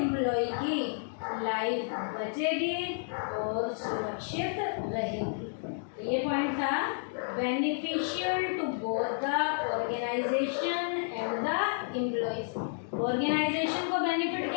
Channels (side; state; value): right; silent; digital silence